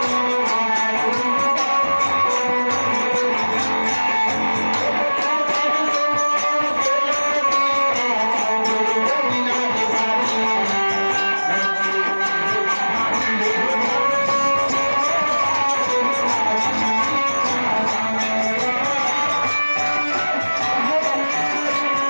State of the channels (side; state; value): both; inverted; correlation -1.00